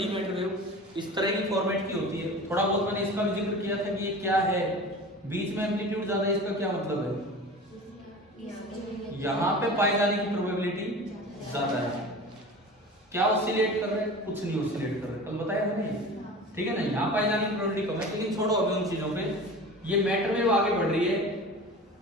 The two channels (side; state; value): both; normal; correlation 0.36